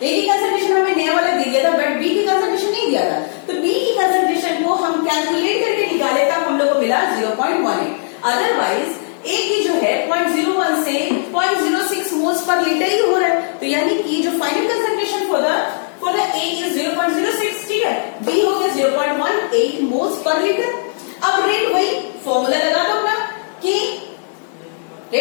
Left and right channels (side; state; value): right; silent; digital silence